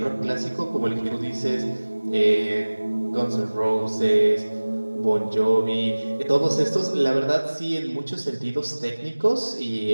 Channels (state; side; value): inverted; both; correlation -1.00